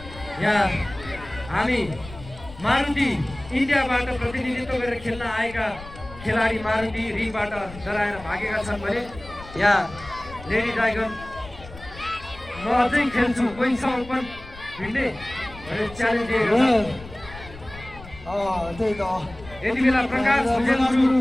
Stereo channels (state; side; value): noise; left; rumble, 17 dB below the sound